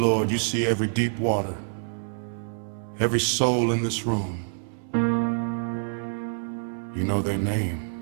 you see every deep water, every soul in this room. You know their name.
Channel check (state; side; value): silent; left; 61 dB below the other